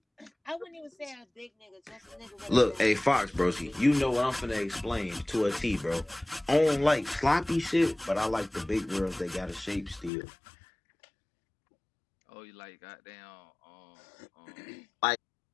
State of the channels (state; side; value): drops out; right; at 10.1 s